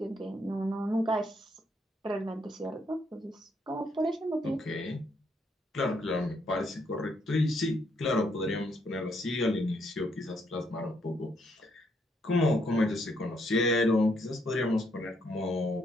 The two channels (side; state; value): both; normal; correlation 0.73